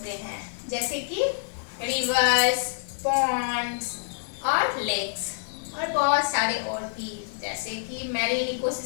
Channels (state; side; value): silent; right; 60 dB below the other